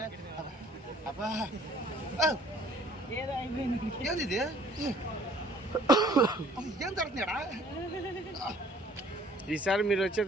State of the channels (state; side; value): normal; both; correlation 0.56